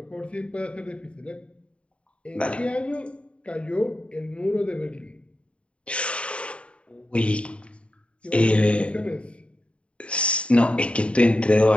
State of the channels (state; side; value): late; right; 0.060 ms